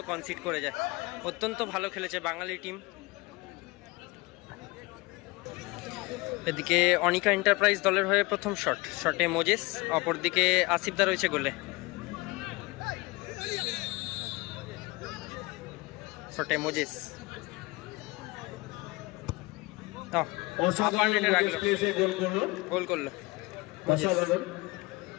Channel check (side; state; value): right; quieter; 23.6 dB